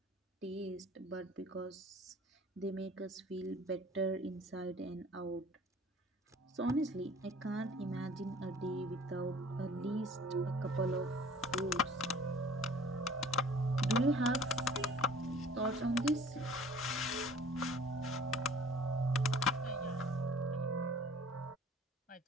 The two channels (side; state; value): both; normal; correlation 0.50